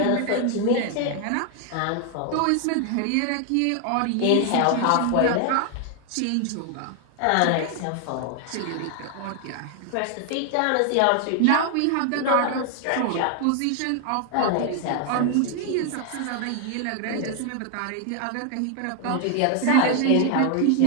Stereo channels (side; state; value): both; different; correlation 0.00